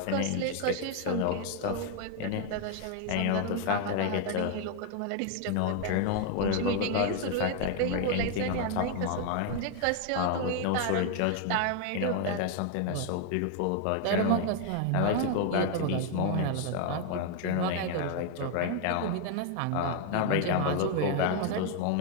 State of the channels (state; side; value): different; both; correlation 0.01